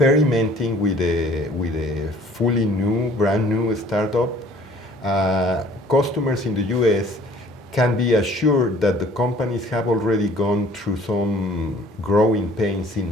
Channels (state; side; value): normal; both; correlation 0.54